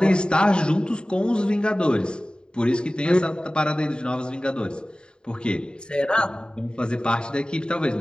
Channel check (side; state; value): right; late; 0.049 ms